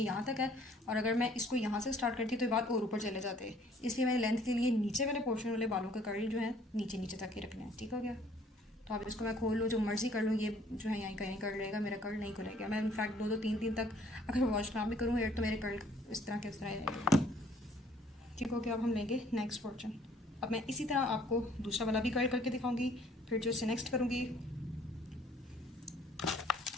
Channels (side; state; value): both; normal; correlation 0.59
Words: यहाँ तक है, और अगर मैं इसको यहाँ से स्टार्ट करती तो ये बाल और ऊपर चले जाते हैं, इसलिए मैंने लेंथ के लिए नीचे वाले पोर्शन वाले बालों के कर्ल जो है नीचे नीचे तक ही रखने हैं। ठीक हो गया। तो अब इसको मैं खोल लूँ, जो मर्जी कर लूँ, ये जो है यहीं कहीं कर्ल रहेगा, मेरा कर्ल नहीं खुलेगा। मैं इनफैक्ट 2-2 3 तक अगर वॉश ना भी करूँ हेयर तो मेरे कर्ल इस तरह के इस तरह ही रहेंगे। ठीक हो गया। अब हम लेंगे नेक्स्ट पोर्शन। अब मैं इसी तरह आपको दूसरा वाला भी कर्ल करके दिखाऊंगी, फिर जो इससे नेक्स्ट करूँगी